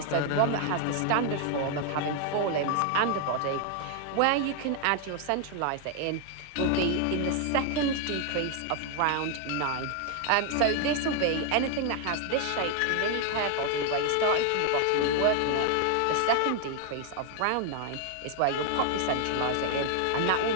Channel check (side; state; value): both; different; correlation 0.00